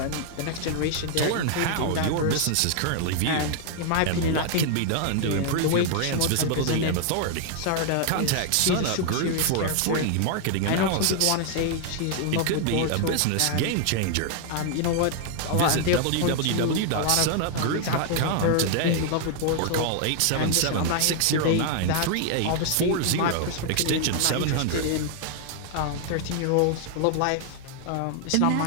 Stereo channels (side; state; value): both; different; correlation 0.00